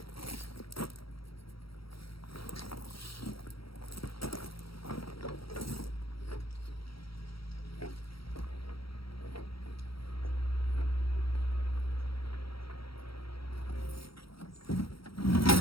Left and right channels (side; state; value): right; late; 0.75 ms